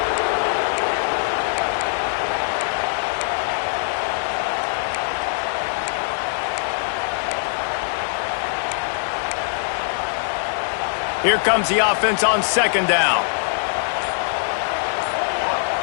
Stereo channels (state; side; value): silent; right; 64 dB below the other